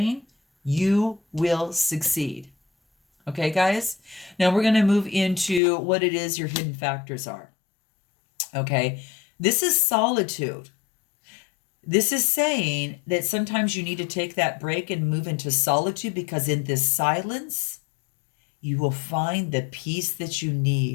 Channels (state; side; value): drops out; right; at 5.6 s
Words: you will succeed. Okay, guys? Now we're going to move into what it is your hidden factors are. Okay, this is solitude. This is saying that sometimes you need to take that break and move into solitude, because in this silence, you will find the peace that you